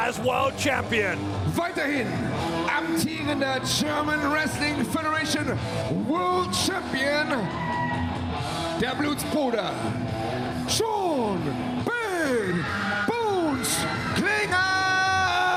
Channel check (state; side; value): identical; both; correlation 1.00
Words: world champion. Weiterhin amtierender German Wrestling Federation World Champion, der Blutsbruder John Bad Bones Klinger!